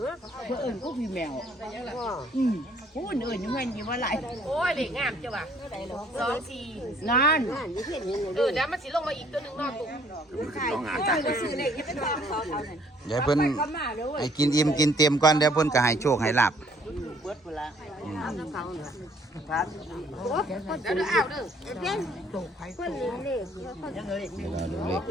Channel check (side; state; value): both; normal; correlation 0.61